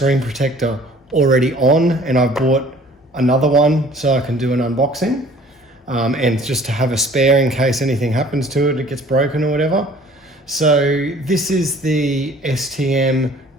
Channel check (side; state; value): both; normal; correlation 0.52